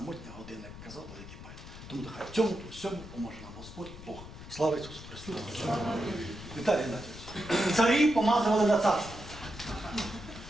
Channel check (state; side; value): noise; left; rumble, 14 dB below the sound